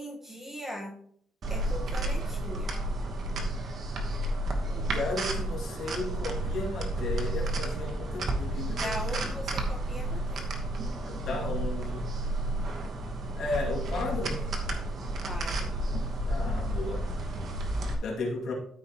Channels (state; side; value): normal; both; correlation 0.68